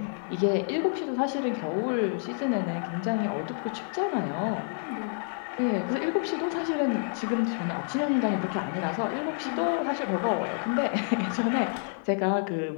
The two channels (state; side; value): silent; right; 59 dB below the other